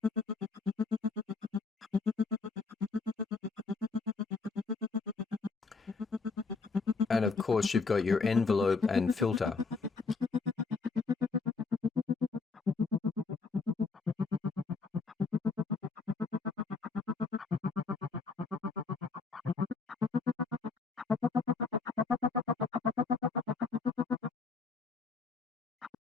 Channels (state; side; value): quieter; right; 4.4 dB